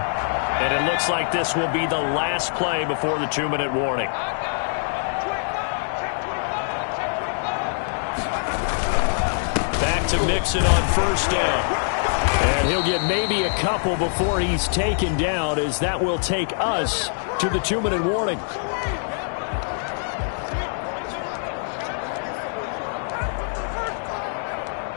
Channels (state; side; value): silent; right; digital silence